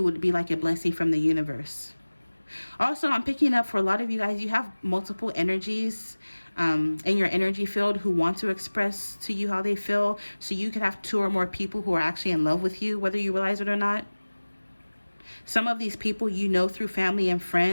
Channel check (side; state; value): both; inverted; correlation -1.00